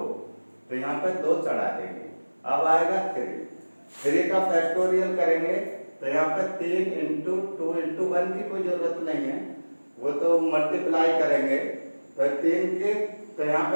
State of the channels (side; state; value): both; inverted; correlation -1.00